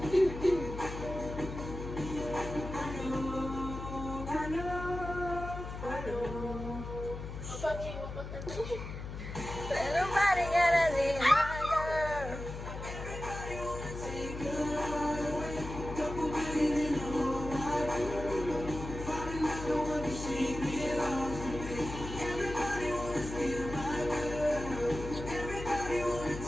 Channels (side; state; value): left; noise; hum, 8 dB below the sound